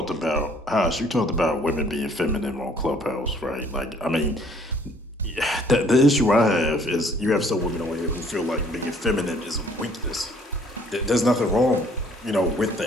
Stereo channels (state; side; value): normal; both; correlation 0.60